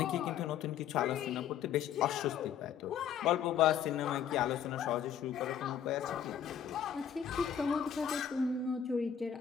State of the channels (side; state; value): right; quieter; 8.9 dB